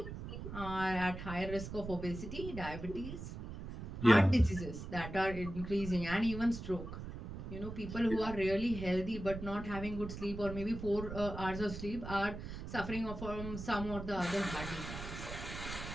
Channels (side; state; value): right; noise; rumble, 8 dB below the sound